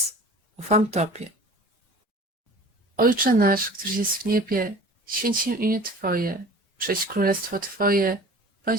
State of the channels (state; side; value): normal; both; correlation 0.42